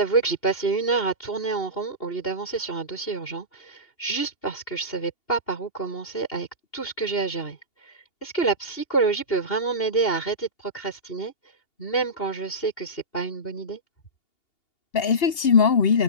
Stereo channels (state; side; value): late; right; 2.8 ms